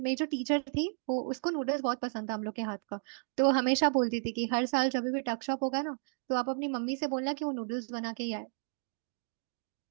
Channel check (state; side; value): silent; left; 56 dB below the other